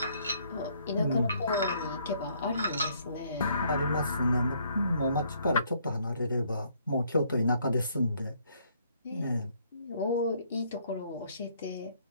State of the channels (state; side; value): inverted; both; correlation -0.66